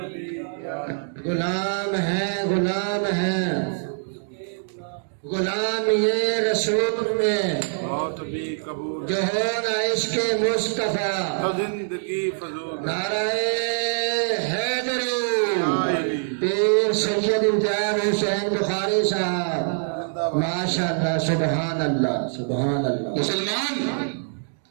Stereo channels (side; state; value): left; silent; digital silence